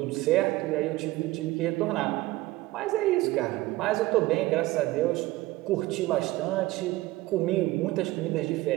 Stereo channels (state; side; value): quieter; left; 18.8 dB